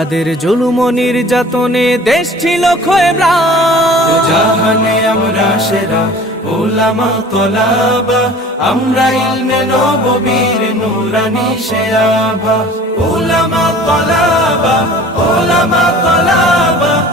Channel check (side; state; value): both; normal; correlation 0.45